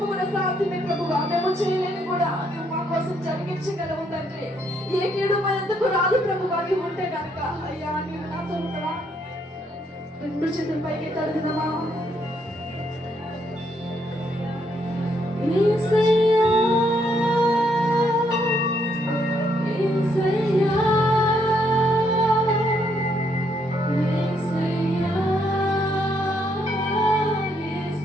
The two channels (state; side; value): normal; both; correlation 0.73